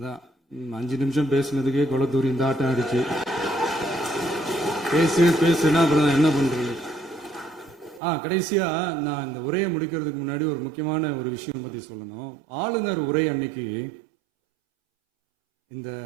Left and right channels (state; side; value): drops out; left; at 8.0 s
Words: 5 நிமிஷம் பேசுனதுக்கே கொளத்தூரி இந்த ஆட்டம் ஆயிடுச்சு. பேசுனா அப்புறம் என்ன பண்றது? கடைசியா நான் இந்த உரையை முடிக்கிறதுக்கு முன்னாடி ஒரு முக்கியமான ஒரு விஷயம் பத்தி சொல்லணும். ஆளுநர் உரை அன்னைக்கு இந்த